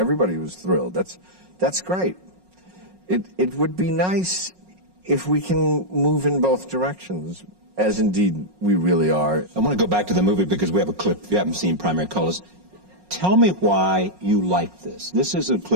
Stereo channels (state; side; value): late; left; 5.5 ms